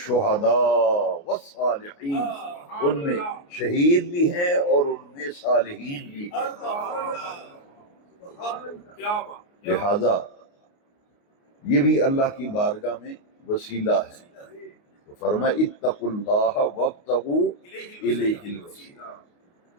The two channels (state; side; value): late; right; 29 ms